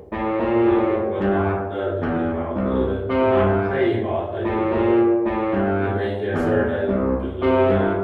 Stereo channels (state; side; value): identical; both; correlation 1.00